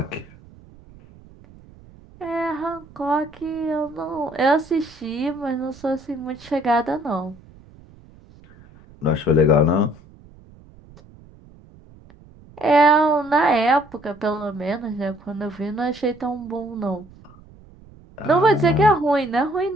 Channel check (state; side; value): noise; right; rumble, 23 dB below the sound